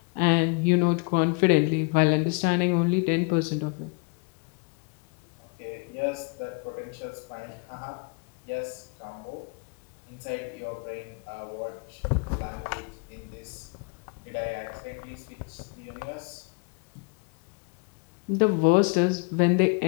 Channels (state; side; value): quieter; right; 32.9 dB